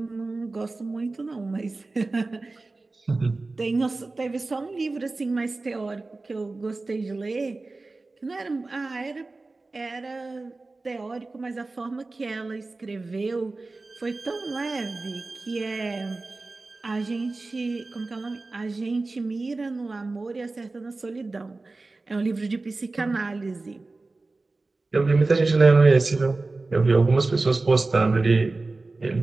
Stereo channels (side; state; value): left; quieter; 3.4 dB